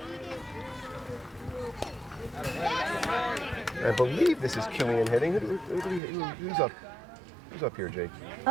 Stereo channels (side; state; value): left; drops out; at 6.0 s